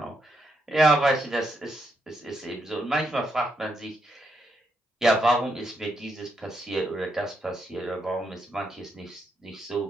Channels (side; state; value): both; normal; correlation 0.80